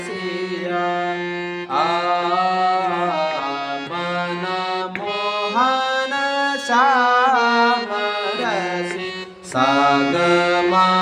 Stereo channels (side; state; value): both; identical; correlation 1.00